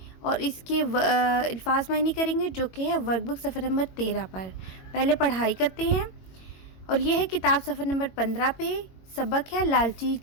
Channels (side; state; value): right; late; 22 ms